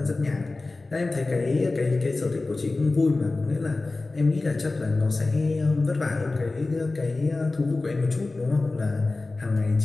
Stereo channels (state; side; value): quieter; right; 3.3 dB